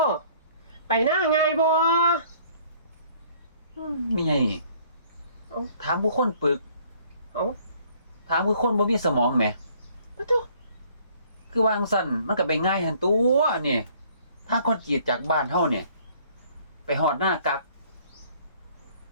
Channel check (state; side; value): inverted; both; correlation -0.59